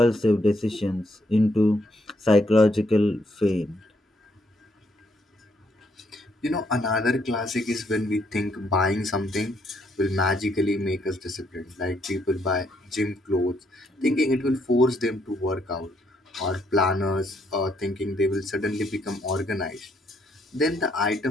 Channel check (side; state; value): both; normal; correlation 0.72